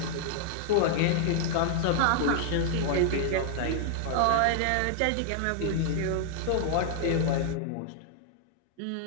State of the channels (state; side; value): different; both; correlation 0.00